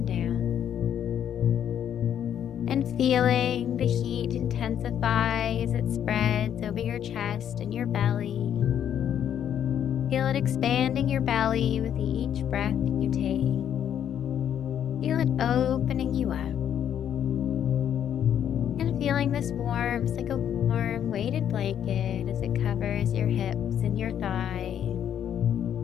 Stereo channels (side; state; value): right; quieter; 9.6 dB